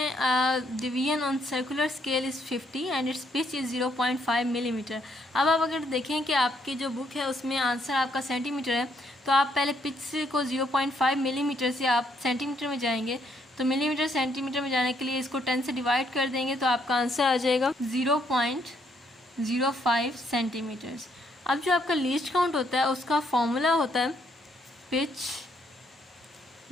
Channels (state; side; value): normal; both; correlation 0.72